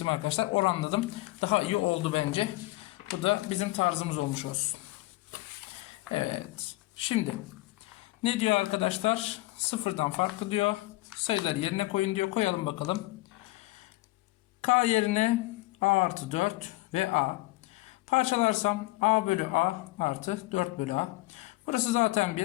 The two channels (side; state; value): right; quieter; 20.1 dB